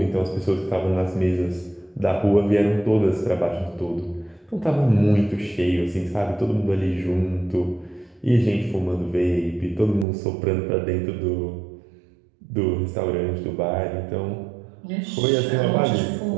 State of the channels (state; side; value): drops out; left; at 10.1 s